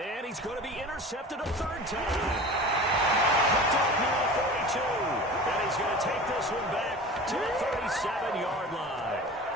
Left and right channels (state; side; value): normal; both; correlation 0.36